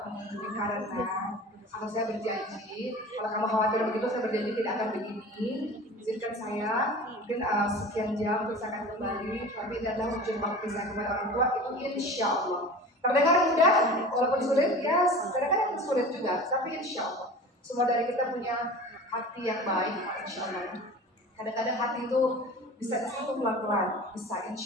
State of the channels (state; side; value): normal; both; correlation 0.38